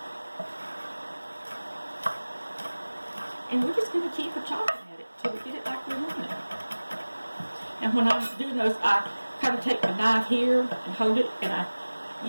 And we're just going to keep chopping at it till we get it like we want it. And when I'm doing those, I kind of take my knife here and hold it, and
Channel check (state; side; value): inverted; both; correlation -1.00